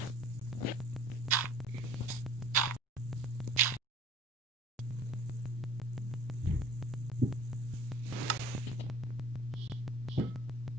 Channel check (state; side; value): normal; both; correlation 0.47